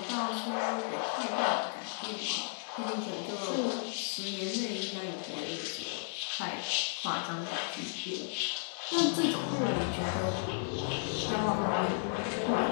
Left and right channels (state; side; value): silent; right; 55 dB below the other